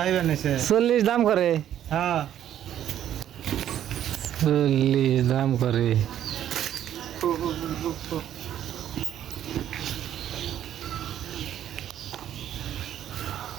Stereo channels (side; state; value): left; quieter; 10.9 dB